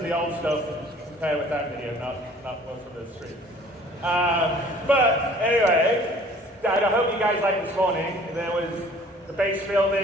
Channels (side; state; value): both; normal; correlation 0.52